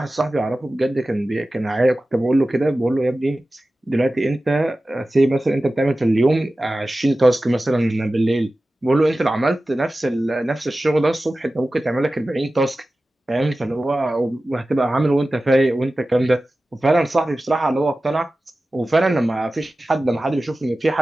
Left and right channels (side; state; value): both; normal; correlation 0.95